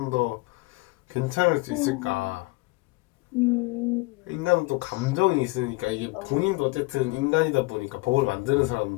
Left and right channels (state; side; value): quieter; right; 23.2 dB